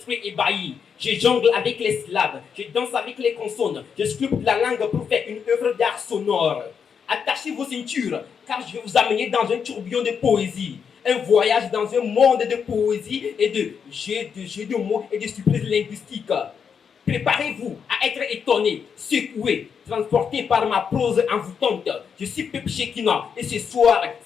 ébahis. Je jongle avec les syllabes, je danse avec les consonnes, je sculpte la langue pour faire une œuvre d'art sonore. Attachez vos ceintures, car je vais vous amener dans un tourbillon de poésie. Un voyage dans un monde de poésie et de jeux de mots et de surprises linguistiques. Préparez-vous à être étonné, secoué, transporté par ma prose envoûtante. Je suis Pep Shekina et ce soir,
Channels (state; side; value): quieter; right; 6.8 dB